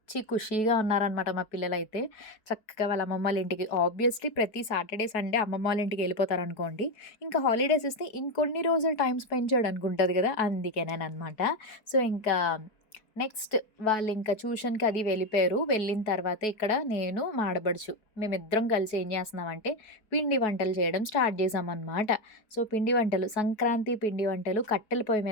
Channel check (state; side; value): late; right; 4.6 ms